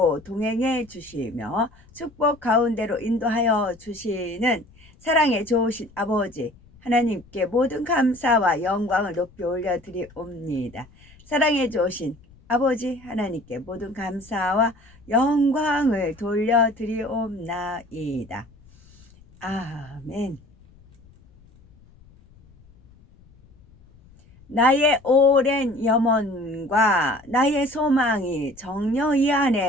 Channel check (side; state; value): left; noise; rumble, 26 dB below the sound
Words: 동행해 주시며 축복 가운데로 인도하여 주시는 사랑의 좋으신 아버지 하나님께 모든 감사와 영광을 높이 올려드리옵니다. 사랑의 좋으신 아버지 하나님께 모든 감사와 영광을 돌려드리옵나이다. 아멘. 나의 오랜 염원과 나의 소망이 정녕 이